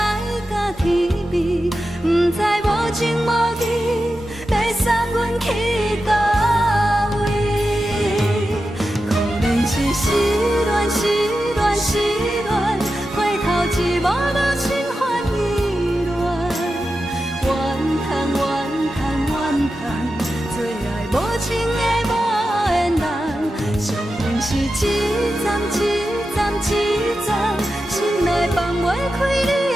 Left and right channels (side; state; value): both; normal; correlation 0.91